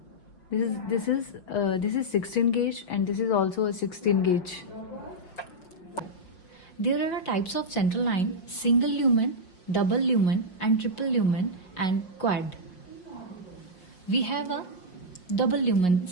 This is 16 gauge and this is also a 16 gauge. There are types of central line: single lumen, double lumen and triple lumen and quad. We have a double lumen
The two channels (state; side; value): late; right; 5.6 ms